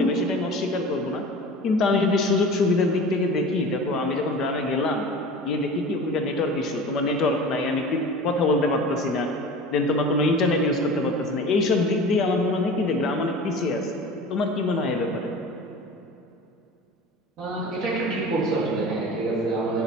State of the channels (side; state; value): both; normal; correlation 0.37